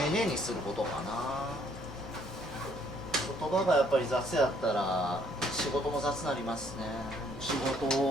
寧にすることかな。言葉がやっぱり雑やったら仕事も雑になりますね。仕事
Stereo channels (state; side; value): normal; both; correlation 0.65